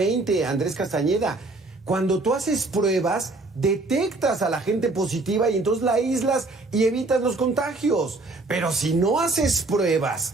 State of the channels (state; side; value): quieter; left; 3.2 dB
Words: Andrés Castañeda. Cuando tú haces pruebas, detectas a la gente positiva y entonces la aíslas y evitas los contagios. Pero si no haces pruebas,